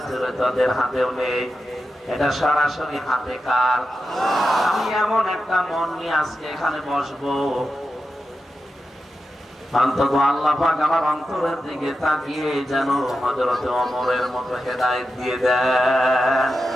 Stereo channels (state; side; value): normal; both; correlation 0.90